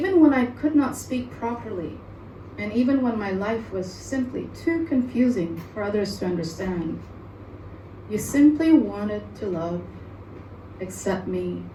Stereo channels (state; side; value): identical; both; correlation 1.00